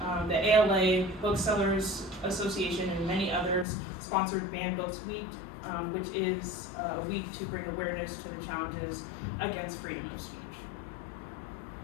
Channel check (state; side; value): drops out; right; at 3.7 s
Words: The ALA, Booksellers Association, and many others sponsored Banned Books Week, which is a week to bring awareness to the challenges against freedom of speech.